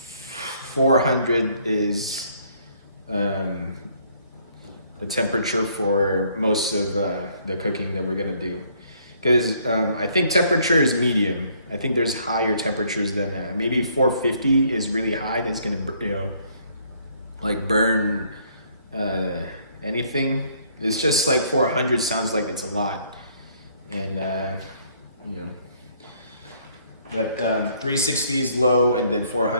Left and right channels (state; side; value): inverted; both; correlation -0.64